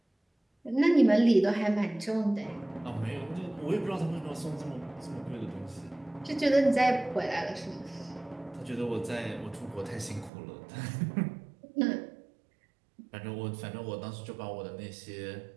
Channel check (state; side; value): drops out; left; at 10.3 s